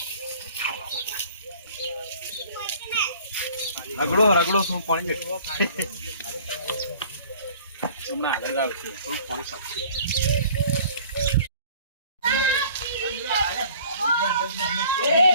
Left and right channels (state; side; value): inverted; both; correlation -0.51